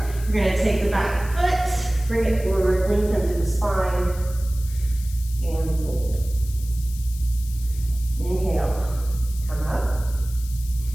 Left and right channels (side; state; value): left; noise; hiss, 17 dB below the sound